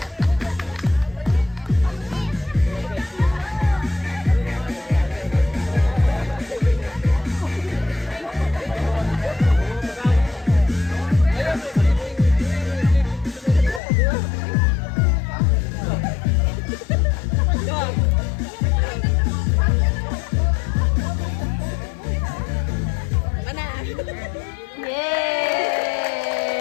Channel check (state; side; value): drops out; right; at 13.8 s